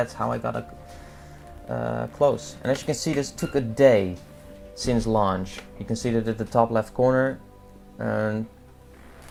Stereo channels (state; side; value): identical; both; correlation 1.00